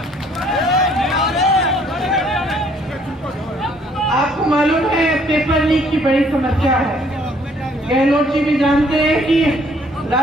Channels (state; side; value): normal; both; correlation 0.63